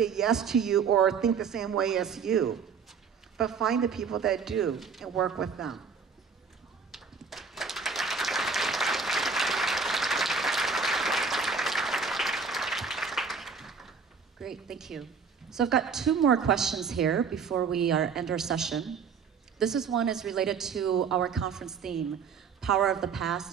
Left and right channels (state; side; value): quieter; left; 5.8 dB